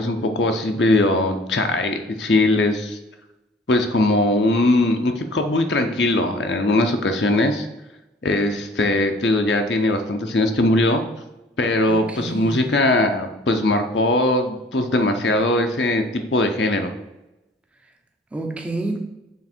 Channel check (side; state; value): both; normal; correlation 0.51